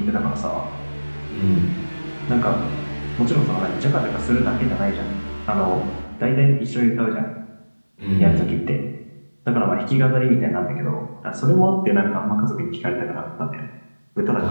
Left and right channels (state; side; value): inverted; both; correlation -1.00